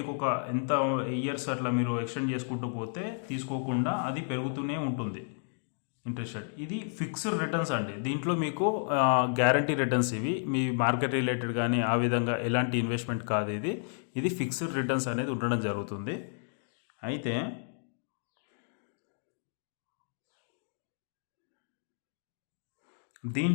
ఒక ఎంత ఇయర్స్ అట్లా మీరు ఎక్స్టెండ్ చేసుకుంటూ పోతే తీసుకోకుండా అది పెరుగుతూనే ఉంటుంది ఇంట్రెస్ట్ రేట్. ఇది ఫిక్స్డ్ రిటర్న్స్ అండి. దీంట్లో మీకు గ్యారంటీ రిటర్న్స్, ఇవి మీ మార్కెట్ రిలేటెడ్ కానీ ఆ విధంగా ఎలాంటి ఇన్వెస్ట్మెంట్ కాదు. ఇది ఫిక్స్డ్ రిటర్న్స్ అనేది ఉండడం జరుగుతుంది. అయితే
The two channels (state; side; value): silent; right; digital silence